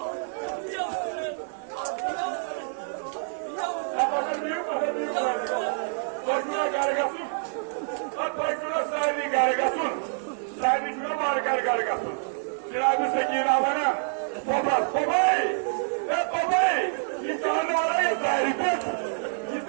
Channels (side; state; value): left; silent; digital silence